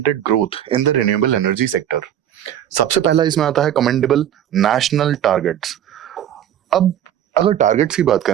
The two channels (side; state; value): left; quieter; 10.6 dB